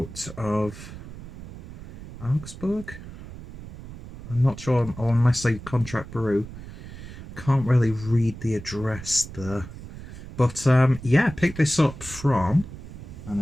of Augsburg. I'm not sure, or unless they contract brew. Can't really read the address there, but yeah, picked this up from, and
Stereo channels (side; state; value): right; noise; rumble, 13 dB below the sound